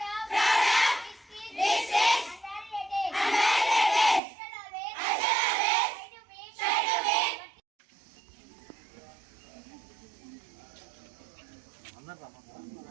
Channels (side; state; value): left; drops out; at 4.2 s